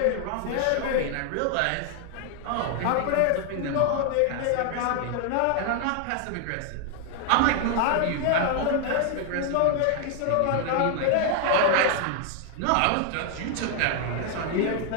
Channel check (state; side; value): different; both; correlation 0.00